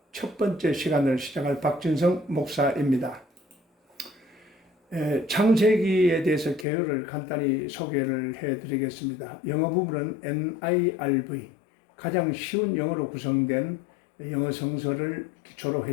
첫 번째 시간을 시작할 박진성 목사입니다. 창세기에 대해서 개요를 간단히 소개를 해드리겠습니다. 영어 부분은 NIRV, 가장 쉬운 영어로 구성된 영어 성서를 기초로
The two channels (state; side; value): drops out; right; at 6.7 s